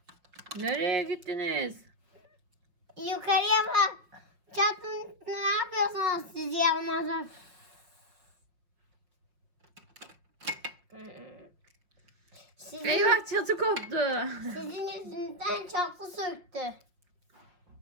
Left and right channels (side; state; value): left; late; 5.6 ms